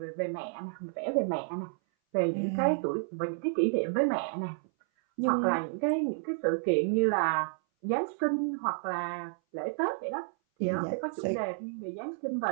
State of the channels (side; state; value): left; silent; 57 dB below the other